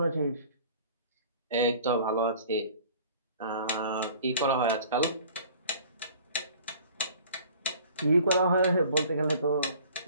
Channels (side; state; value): both; inverted; correlation -0.49